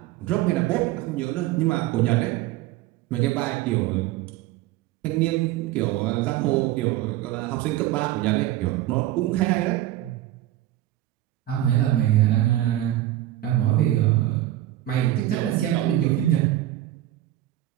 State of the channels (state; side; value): quieter; left; 14.3 dB